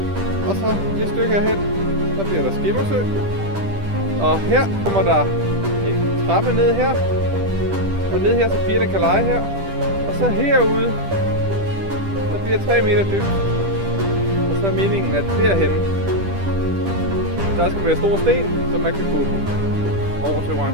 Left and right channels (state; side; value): late; left; 10 ms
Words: Og så det stykke herhen. Så bliver der skimmersø. Og her kommer der en trappe ned her. Og ned her, så pigerne kan lege her. Og så herude, der bliver 3 meter dybt. Og så er meningen, at derhenne, der skal være store sten, så man kan gå over til